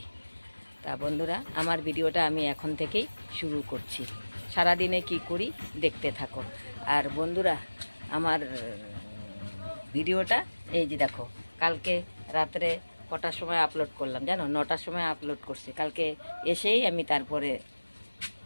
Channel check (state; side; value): inverted; both; correlation -1.00